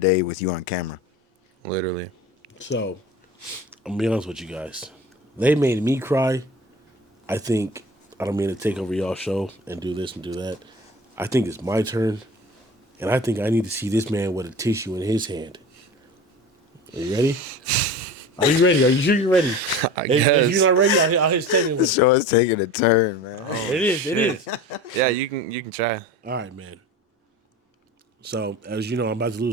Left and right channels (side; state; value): both; normal; correlation 0.35